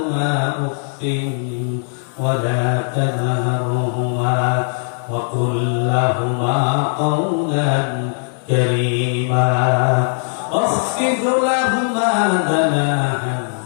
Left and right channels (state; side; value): silent; right; 67 dB below the other